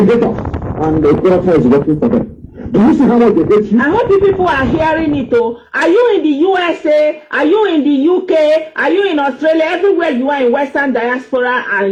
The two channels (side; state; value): both; identical; correlation 1.00